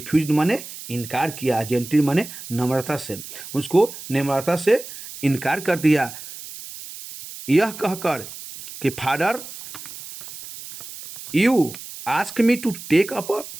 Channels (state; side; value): noise; right; hiss, 13 dB below the sound